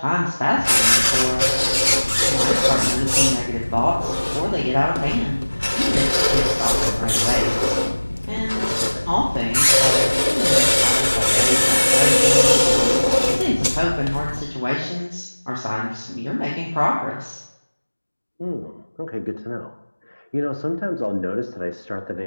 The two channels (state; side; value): inverted; both; correlation -1.00